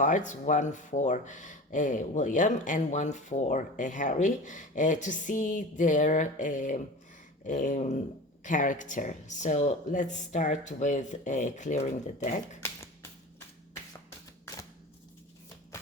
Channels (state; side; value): normal; both; correlation 0.34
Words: one for William and one for Harry, to see their character. So let's start with clearing the deck.